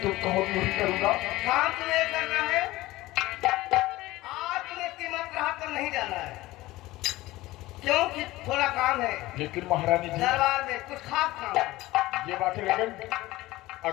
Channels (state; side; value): quieter; right; 18.2 dB